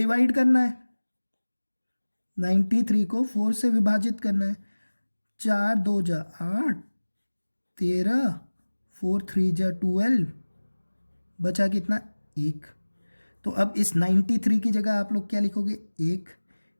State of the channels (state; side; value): inverted; both; correlation -1.00